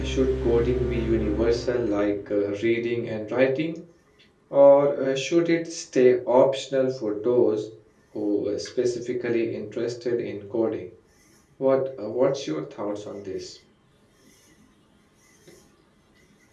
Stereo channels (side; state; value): both; identical; correlation 1.00